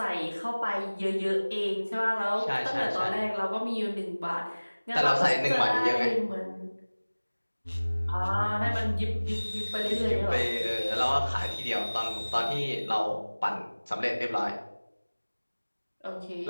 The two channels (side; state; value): both; inverted; correlation -1.00